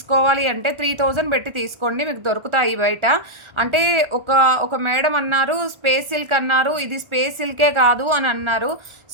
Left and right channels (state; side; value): late; left; 1.4 ms